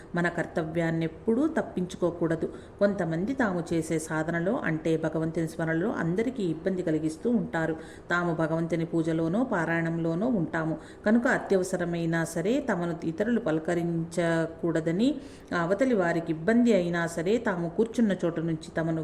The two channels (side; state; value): both; identical; correlation 1.00